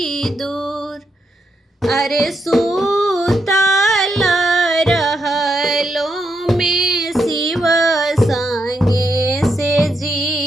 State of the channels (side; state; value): both; normal; correlation 0.81